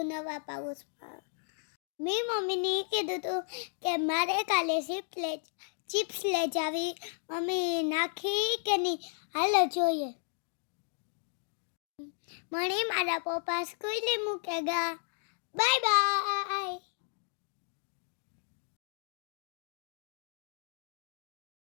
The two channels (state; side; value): silent; right; digital silence